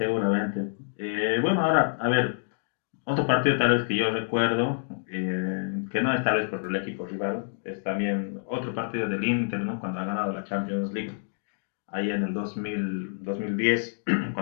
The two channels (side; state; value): right; silent; digital silence